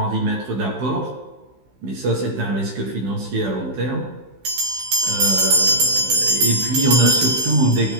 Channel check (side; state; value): left; late; 16 ms